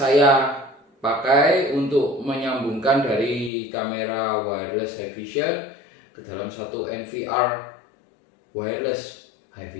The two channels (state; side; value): drops out; right; at 3.5 s